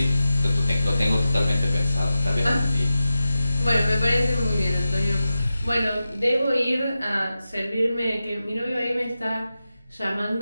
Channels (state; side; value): inverted; both; correlation -0.93